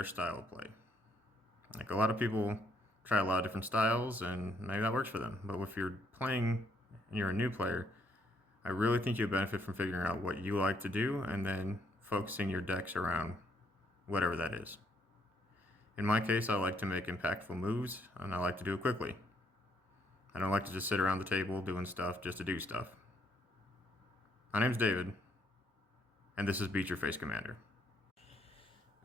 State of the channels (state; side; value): normal; both; correlation 0.71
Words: style of play. Like a lot of people try a lot of different styles, and maybe that works for them. But if you're playing and you're a new player, I really think you'll benefit from figuring out what you like to do and then focusing your decks around whatever that is. In my case, I like to make impactful moves, and I like to do it quickly. I don't like to just sit around the table doing stuff just to do stuff. My name's David, and this is Beat Your Face Commander.